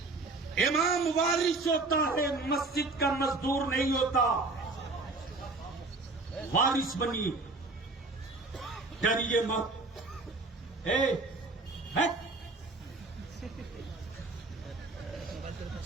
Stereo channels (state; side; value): quieter; left; 3.4 dB